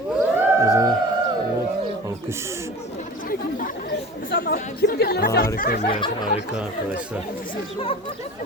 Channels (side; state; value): both; normal; correlation 0.37